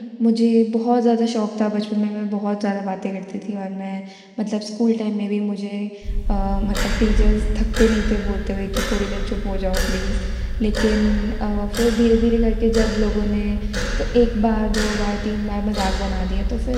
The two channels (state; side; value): identical; both; correlation 1.00